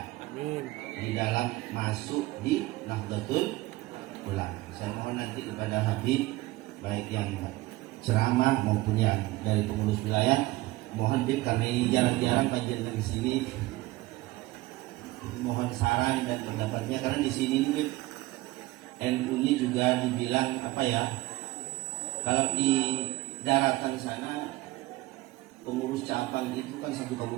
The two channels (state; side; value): quieter; left; 19.3 dB